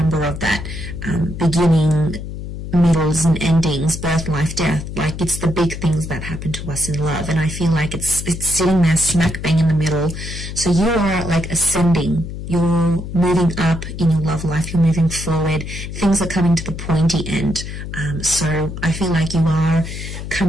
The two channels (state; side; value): noise; left; hum, 8 dB below the sound